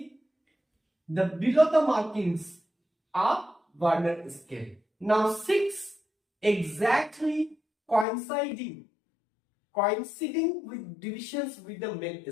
the below the markings are Vernier scale. Now 6 exactly coinciding with divisions with the main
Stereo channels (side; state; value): right; drops out; at 8.1 s